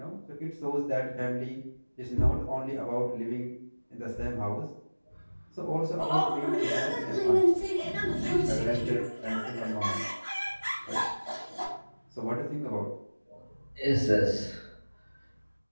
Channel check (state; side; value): inverted; both; correlation -1.00